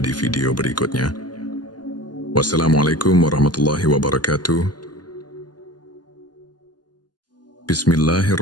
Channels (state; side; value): late; right; 0.70 ms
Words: di video berikutnya. Wassalamualaikum warahmatullahi wabarakatuh.